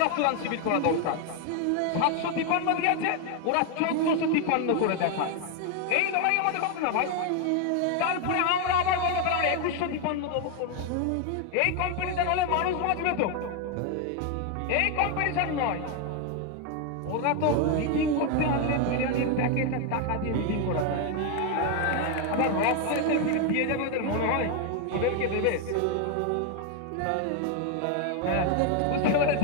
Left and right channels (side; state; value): both; different; correlation 0.01